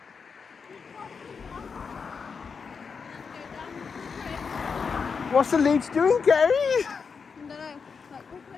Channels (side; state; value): right; quieter; 5.6 dB